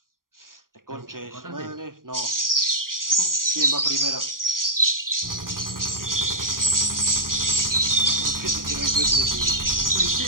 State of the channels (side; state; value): left; late; 0.91 ms